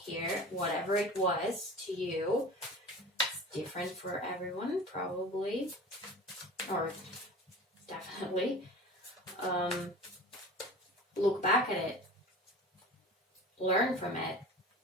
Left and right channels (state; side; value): normal; both; correlation 0.37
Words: whatever it was to you, it's different for everyone, probably, or definitely. Look back at it, learn from it,